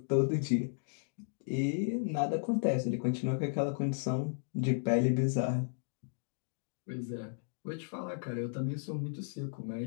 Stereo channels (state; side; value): silent; right; digital silence